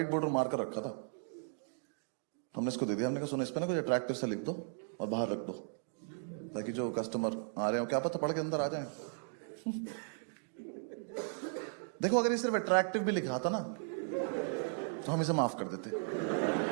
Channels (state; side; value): silent; left; digital silence